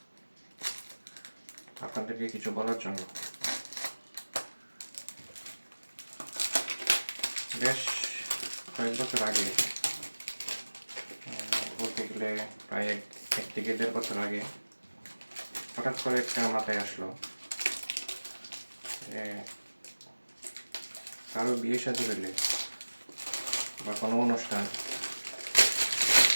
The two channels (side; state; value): both; inverted; correlation -1.00